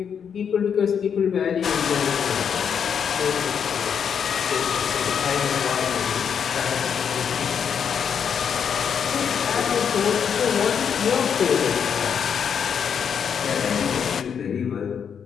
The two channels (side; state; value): right; quieter; 7.4 dB